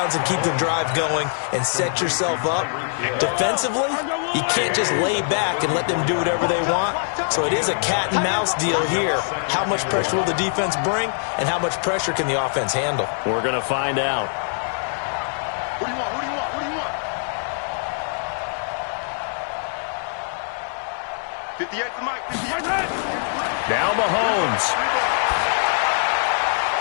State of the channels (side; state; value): right; silent; 61 dB below the other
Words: and keep the drive going and set yourself up. Defensively, you can't just lay back and let them do whatever they want. So it is a cat and mouse deal here. How much pressure will the defense bring, and how much pressure can the offense handle? We're going to find out. Who do you want? Who do you want? Who do you want? 58 to Mike. 58. Now Mahomes.